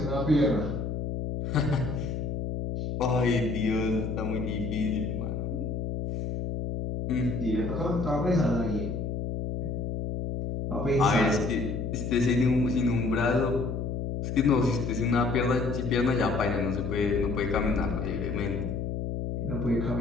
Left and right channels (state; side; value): noise; left; hum, 3 dB below the sound